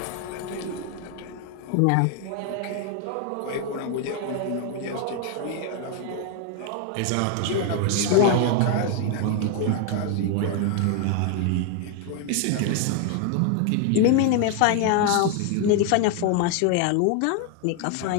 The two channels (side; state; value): both; different; correlation 0.00